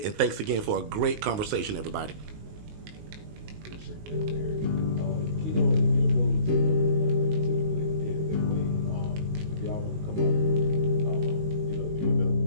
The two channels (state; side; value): late; left; 19 ms